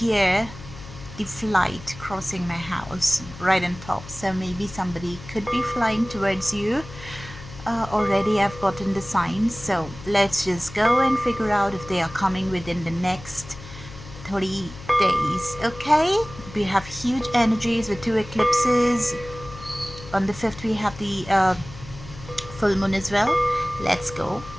the flight crossing my house right on top. So maybe somebody could be flying towards you. Already I've gotten the signs. So let's just go and figure out if they are coming within the next 30 days. Okay, we have huge energies with 2 eclipses. On the 5th we have the full moon as well. Let's go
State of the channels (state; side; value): noise; left; hum, 15 dB below the sound